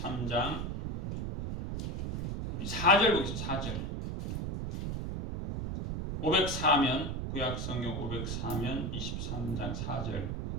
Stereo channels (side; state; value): right; noise; rumble, 3 dB below the sound